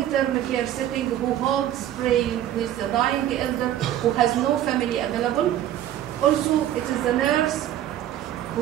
care setting, who holds praying with the dying elder who has no family available. Also, it is the nurse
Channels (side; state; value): left; quieter; 12.0 dB